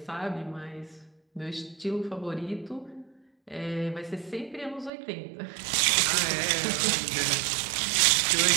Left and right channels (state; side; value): drops out; left; at 4.9 s